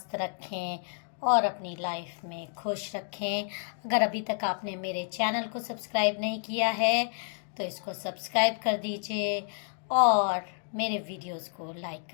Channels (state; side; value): silent; right; 56 dB below the other